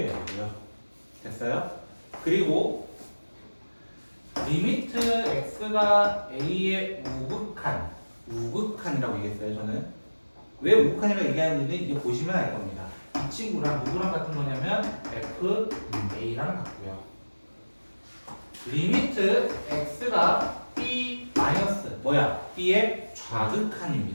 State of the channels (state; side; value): inverted; both; correlation -1.00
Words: 돼요. 됐어요? 그리고 리미트 x가 a의 우극한이라고 얘기했어요. 저는 왜 우극한이라고 얘기하는지는 이제 보시면 알 겁니다. 이 친구랑 누구랑 같은 거냐면 f a랑 같고요. 리미트 x가 b 마이너스 b의